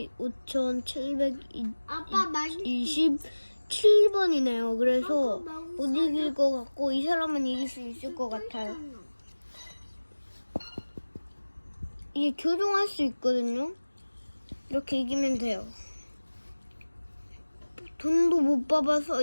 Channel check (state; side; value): inverted; both; correlation -1.00